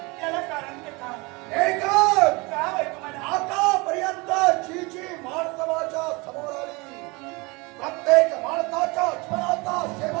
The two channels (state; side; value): quieter; left; 26.2 dB